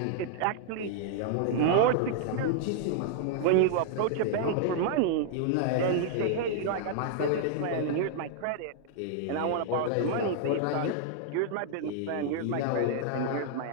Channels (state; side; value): different; both; correlation -0.01